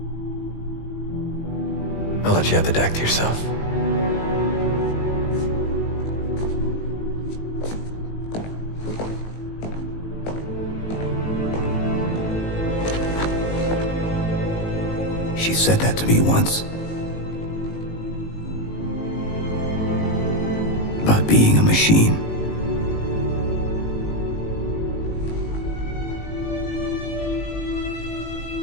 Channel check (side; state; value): right; late; 19 ms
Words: I'll let you have the deck to yourself. She said that to me once. About being a machine.